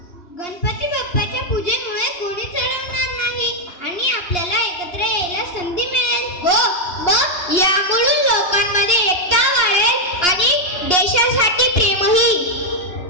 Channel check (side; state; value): right; late; 2.8 ms